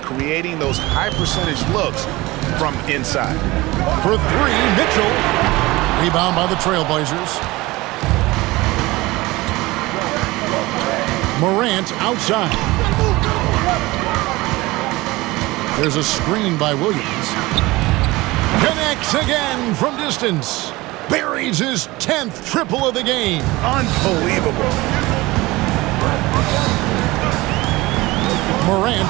creating those high percentage looks from inside. For three, Mitchell. Rebound by the Trailblazers. Morant outside. There's a screen by Williams. Connects again from distance. Buries his 10th triple of the game. Unbelievable.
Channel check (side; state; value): left; quieter; 20.6 dB